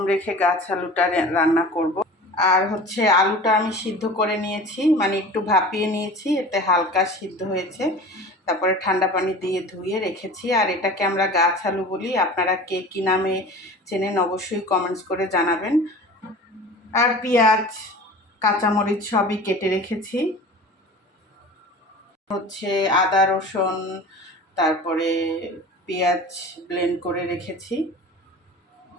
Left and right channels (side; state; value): both; normal; correlation 0.38